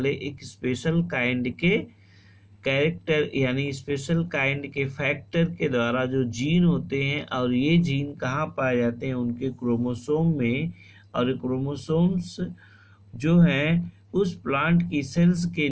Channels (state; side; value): identical; both; correlation 1.00